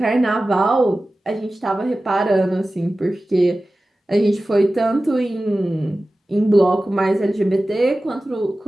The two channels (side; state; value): both; normal; correlation 0.96